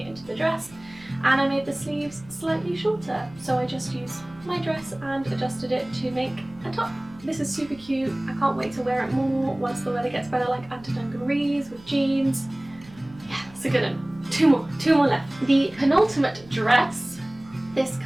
it into the dress. And I made the sleeves slightly shorter, so I just used my dress and adjusted it to make a top. This is super cute. I can't wait to wear it more once the weather gets better, like under dungarees with jeans. Yeah, it's a good one. Two more left. The penultimate dress, this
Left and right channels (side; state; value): right; noise; hum, 23 dB below the sound